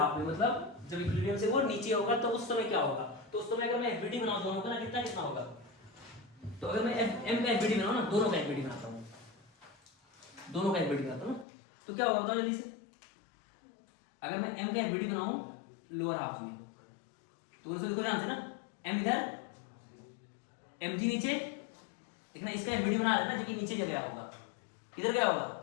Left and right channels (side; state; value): right; drops out; at 11.5 s